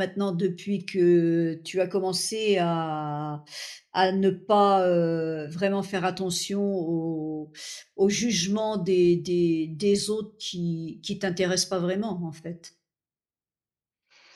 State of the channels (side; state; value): both; identical; correlation 1.00